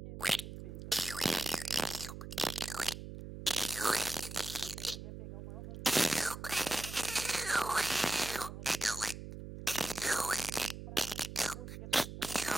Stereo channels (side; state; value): right; noise; hum, 10 dB below the sound